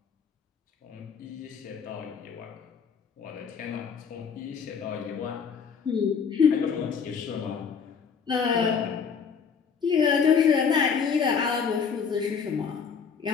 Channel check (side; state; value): right; quieter; 6.3 dB